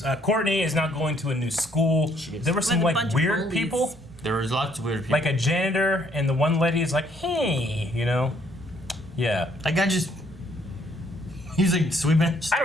Courtney is now going to a new school. There were some With a like bunch of weird bullies. people. There was lots of weird people. Like a janitor, and the one lady is like, hey, you know? Yeah. That guy just... He's like sweeping. I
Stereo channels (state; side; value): normal; both; correlation 0.66